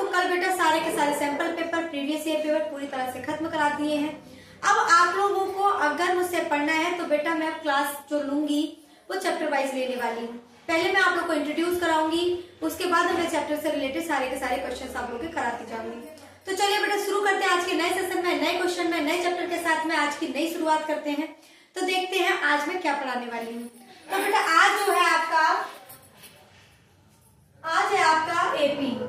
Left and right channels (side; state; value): both; identical; correlation 1.00